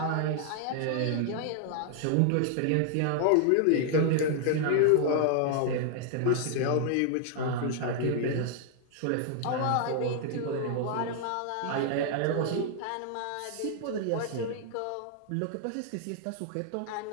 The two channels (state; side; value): different; both; correlation 0.00